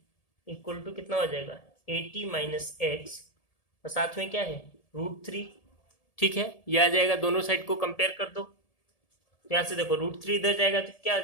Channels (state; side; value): late; right; 1.7 ms